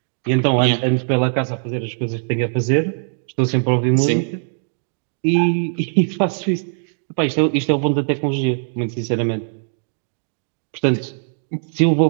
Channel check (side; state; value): left; silent; digital silence